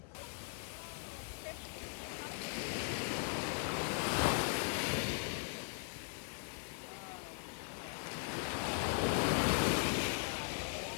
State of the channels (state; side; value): silent; right; 52 dB below the other